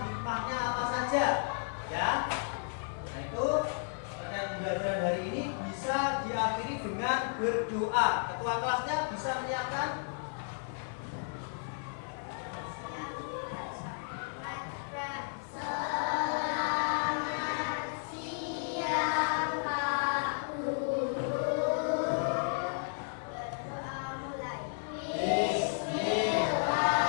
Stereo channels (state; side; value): silent; right; digital silence